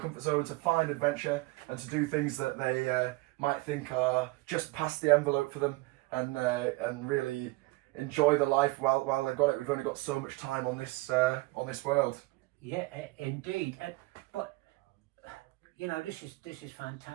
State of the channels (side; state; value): left; quieter; 22.5 dB